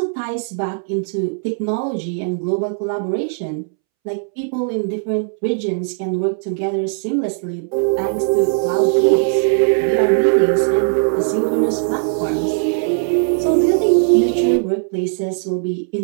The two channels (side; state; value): left; silent; 67 dB below the other